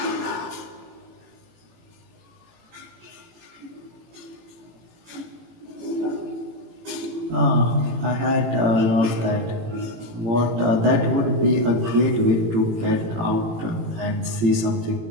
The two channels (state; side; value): late; left; 18 ms